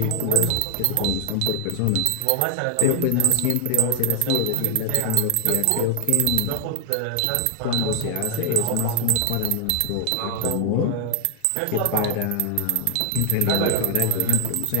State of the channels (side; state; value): both; different; correlation 0.00